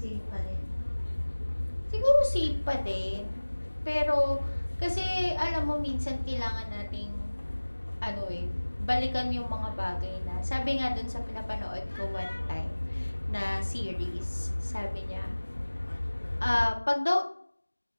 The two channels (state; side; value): inverted; both; correlation -1.00